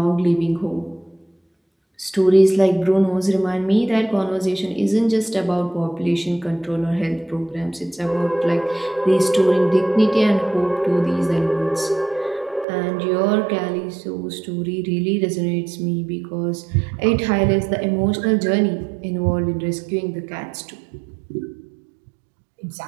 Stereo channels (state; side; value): drops out; left; at 12.7 s